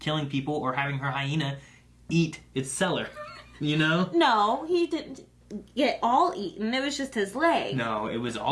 people or having her hyena eat its seller. You know? No, he didn't get all eaten. It was just his leg. No, it was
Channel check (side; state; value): both; identical; correlation 1.00